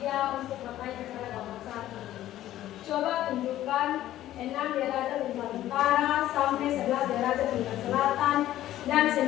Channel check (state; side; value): quieter; right; 13.5 dB